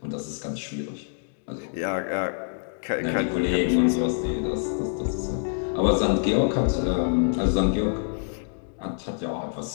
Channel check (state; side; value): silent; right; digital silence